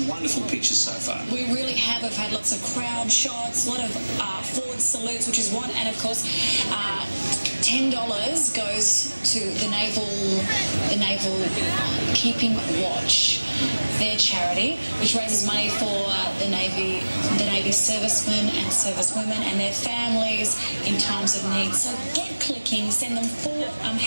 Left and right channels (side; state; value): both; inverted; correlation -1.00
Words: wonderful pictures so far. We really have. We've had lots of crowd shots, a lot of forward salutes, which is one, and of course, $10 goes to the Naval Keeping Watch, their charity, which raises money for the Navy servicemen and servicewomen and their families in times of need. So get clicking, send them for